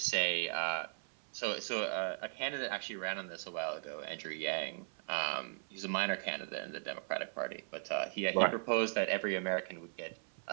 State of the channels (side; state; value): left; silent; 53 dB below the other